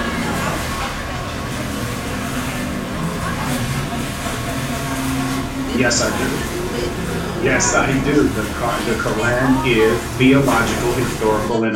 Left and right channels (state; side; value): identical; both; correlation 1.00